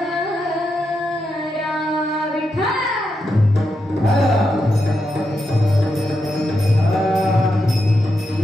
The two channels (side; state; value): both; normal; correlation 0.85